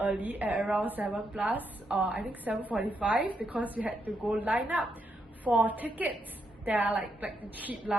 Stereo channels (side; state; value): both; normal; correlation 0.80